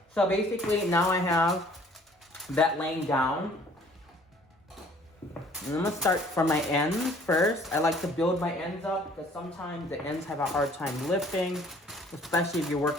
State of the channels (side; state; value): both; normal; correlation 0.56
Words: So basically now I have that laying down. And I'm gonna start from my ends first. I like to build my ends up because sometimes the ends have a hard time lifting, especially if you're